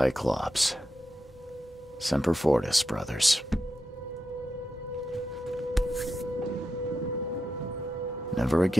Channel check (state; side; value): normal; both; correlation 0.88